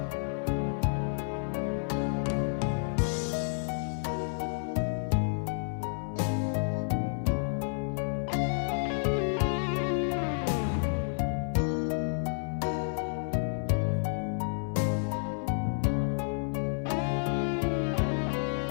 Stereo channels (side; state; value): right; silent; 58 dB below the other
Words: Hanggang sa mga sandaling ito, di ako nagbabago. Taglay ko pa rin ang damdamin sa ating lumang litrato.